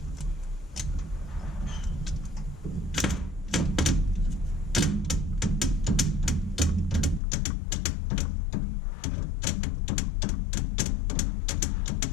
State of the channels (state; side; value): drops out; right; at 7.2 s